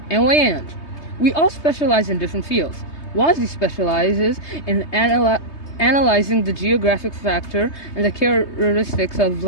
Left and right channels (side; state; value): right; late; 3.2 ms